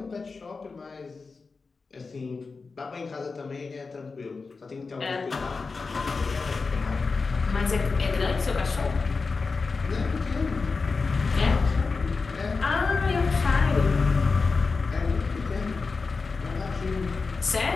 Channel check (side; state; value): right; quieter; 4.4 dB